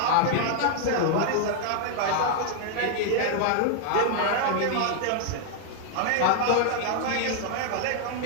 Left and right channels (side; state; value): both; different; correlation 0.00